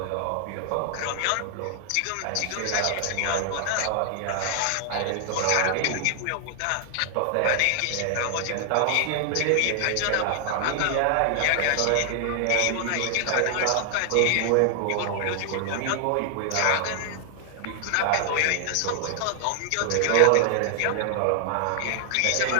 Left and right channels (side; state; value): both; different; correlation 0.00